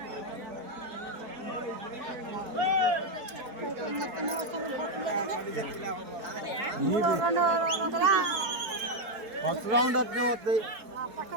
first round అట్నే వస్తాయి.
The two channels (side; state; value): left; late; 4.2 ms